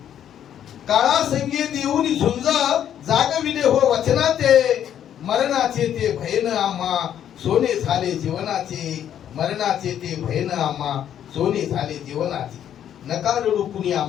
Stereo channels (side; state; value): right; quieter; 10.0 dB